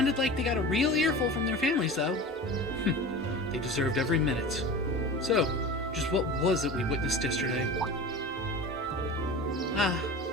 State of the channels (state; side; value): normal; both; correlation 0.33